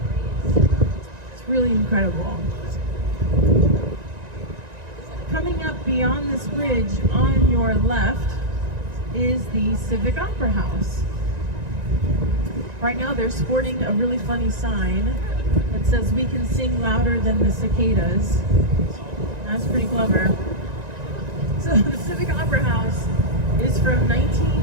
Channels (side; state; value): left; late; 1.9 ms